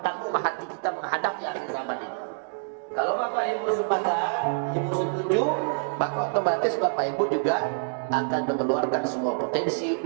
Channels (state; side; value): silent; left; digital silence